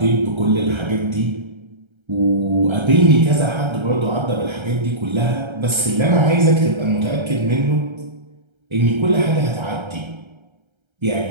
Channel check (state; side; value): late; left; 1.3 ms